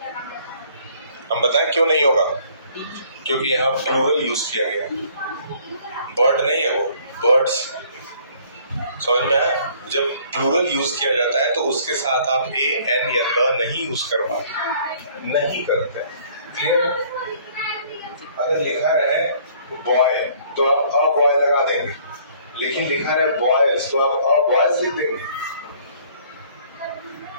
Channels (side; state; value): both; inverted; correlation -0.58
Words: हम बताएं क्यों नहीं होगा? क्योंकि यहाँ प्लूरल यूज किया गया। बर्ड नहीं है वो, बर्ड्स। समझ में आया? जब प्लूरल यूज किया जाता है तो उसके साथ आप ए एन या द नहीं यूज कर पाते, नहीं करते। क्लियर? अगर लिखा रहे बॉय तो आप अ बॉय लगा देंगे, लेकिन लिखा रहे बॉयज तो आप अ बॉयज लिख देंगे।